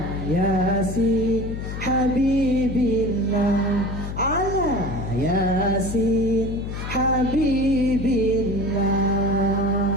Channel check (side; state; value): left; noise; hum, 6 dB below the sound